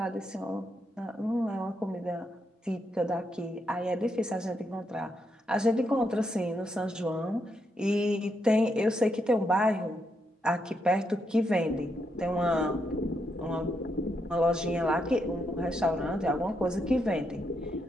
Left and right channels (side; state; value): both; normal; correlation 0.80